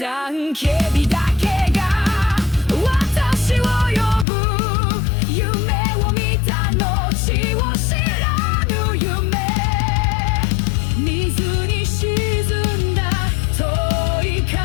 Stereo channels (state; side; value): drops out; right; at 4.2 s